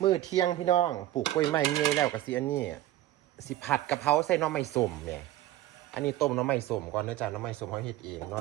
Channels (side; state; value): left; quieter; 14.5 dB